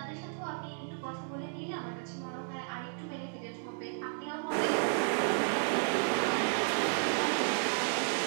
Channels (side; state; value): left; silent; 56 dB below the other